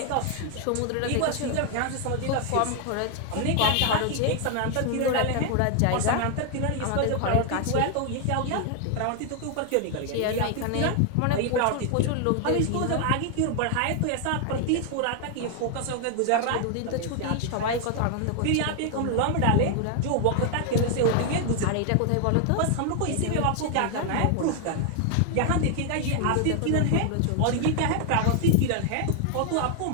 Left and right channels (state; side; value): different; both; correlation 0.00